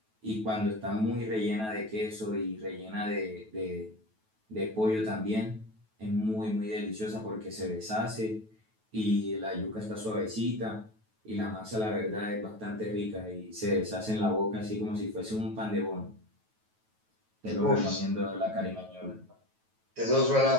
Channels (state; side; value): late; left; 9.2 ms